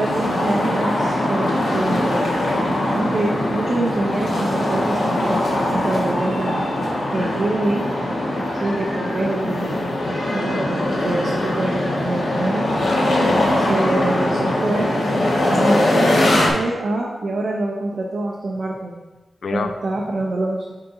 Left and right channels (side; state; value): both; normal; correlation 0.90